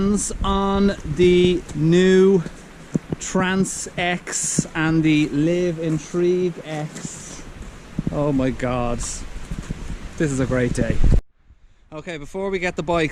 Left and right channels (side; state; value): both; identical; correlation 1.00